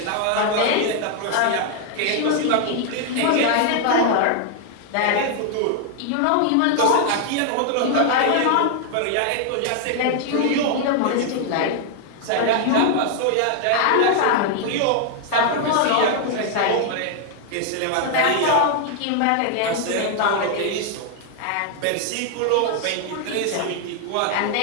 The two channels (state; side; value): different; both; correlation 0.00